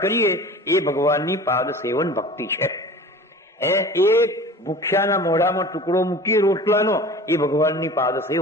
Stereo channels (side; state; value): both; normal; correlation 0.41